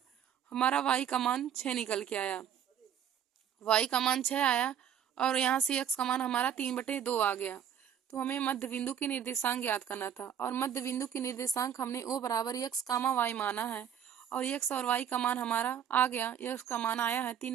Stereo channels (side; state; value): left; quieter; 8.9 dB